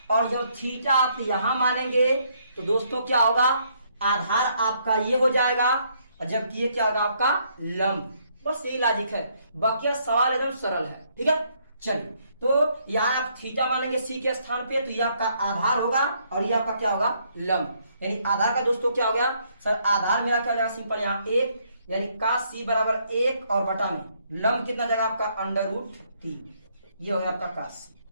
और जब थीटा आप यहां मानेंगे तो दोस्तों क्या होगा, आधार आपका ये हो जाएगा, और जबकि ये क्या होगा आपका लंब। बस यही लॉजिक है, बाकी सवाल एकदम सरल है। ठीक है, चलिए, तो यहाँ आप थीटा मानेंगे सी के स्थान पे, तो ये आपका आधार होगा और ये आपका क्या होगा, लंब। यानी आधार का दोस्तों क्या हो गया सर, आधार मेरा क्या हो जाएगा सिंपल, यहाँ 1, यानी cos c बराबर 1 और बटा में लंब कितना जाएगा आपका √3, ये हो गया आपका cos c।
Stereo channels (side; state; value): both; inverted; correlation -0.70